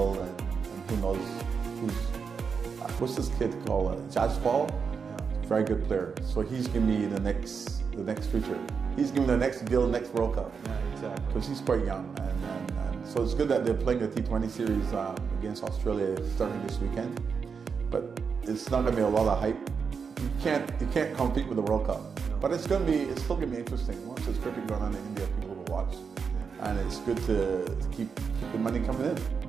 and who knows what's this kid called? Jaspal? Very good player. So he's going to be the next future. He's going to be the next Gill, next World Cup. Yeah, exactly. Because he's quite young. And so it's good that they're playing the T20 series against Australia starting this weekend. But it's not going to be a lot of hype. You can't compete with the World Cup. No. But it's still going to be interesting. Once there's cricket going on in India, people will watch. And it's good to keep the money coming in,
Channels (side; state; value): left; quieter; 5.9 dB